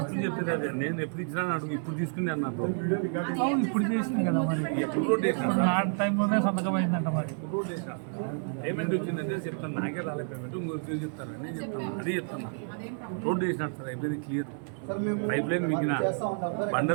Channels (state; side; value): silent; left; 58 dB below the other